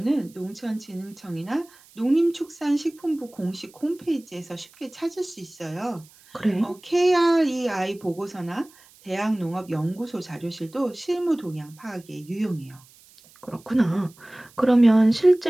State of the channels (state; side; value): noise; right; hiss, 26 dB below the sound